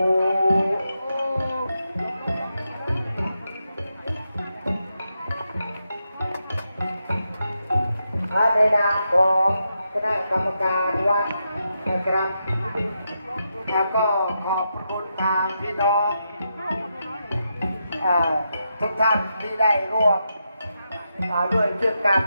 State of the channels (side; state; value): both; inverted; correlation -0.85